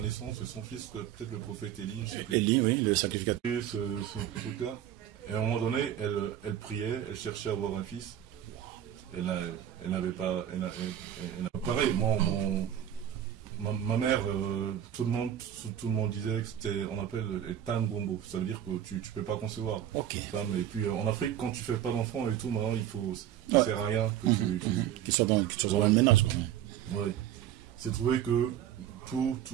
de son fils, peut-être le prophète Élie, je sais plus. Élie, oui, le sacrificateur. Et ce truc-là. Et à un moment donné, elle priait, elle cherchait à avoir un fils. Elle n'avait pas. Pareil, ma mère, tout le monde disait que c'était, on appelle les tangombo. Ça veut dire que tu peux pas concevoir. Ok. Femme. Et puis en Afrique, quand tu fais pas d'enfant et tout, maintenant ça sert à rien que tu sois dans le ménage. Ouais. C'est trouvé que tout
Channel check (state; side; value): quieter; left; 10.9 dB